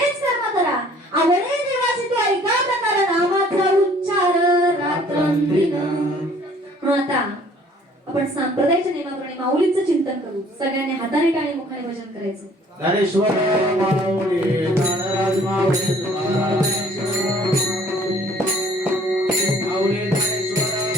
कर्म करा. आवडेल देवाचे तो ऐका प्रकार नामाचा उच्चार रात्रंदिन. म्हणून आता आपण सांप्रदायिक नियमाप्रमाणे माऊलीचं चिंतन करू. सगळ्यांनी हाताने टाळी मुखाने भजन करायचं. ज्ञानेश्वर माऊली ज्ञानराज माऊली तुकाराम माऊली ज्ञानेश्वर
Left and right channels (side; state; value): both; normal; correlation 0.56